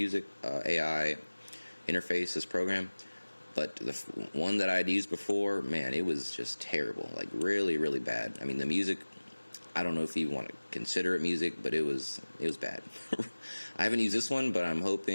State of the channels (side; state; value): both; inverted; correlation -1.00